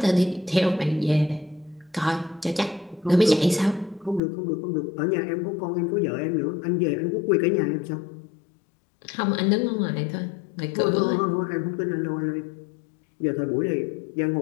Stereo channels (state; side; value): drops out; right; at 4.2 s